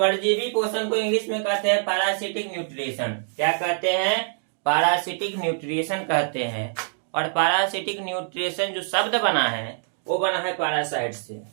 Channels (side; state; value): left; silent; digital silence